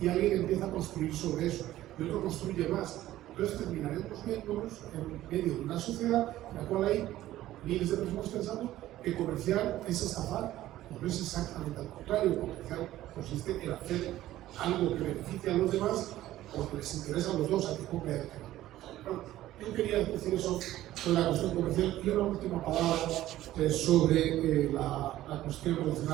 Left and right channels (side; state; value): left; quieter; 14.5 dB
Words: alguien empieza a construir sobre eso y otro construye más. Entonces terminaremos viéndonos en medio de una sociedad en la cual hay miles de personas pensando que comerciar es estafar. No es exactamente al contrario. Comerciar consiste en hacer algo que beneficie a los demás porque les interesa a los dos, a que compre y a que no. Bueno, yo quería decir eso sobre la cuestión comercial y una última palabra sobre la cuestión